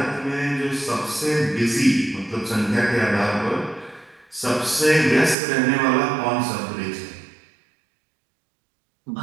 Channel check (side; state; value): left; drops out; at 5.4 s